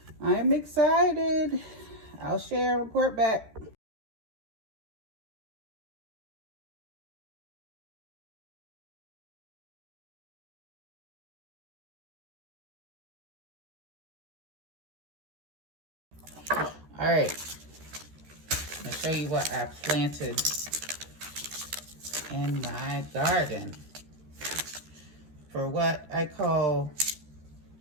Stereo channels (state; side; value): late; left; 13 ms